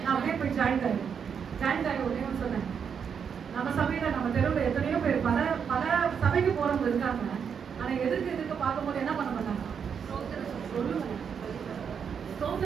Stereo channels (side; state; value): left; quieter; 7.1 dB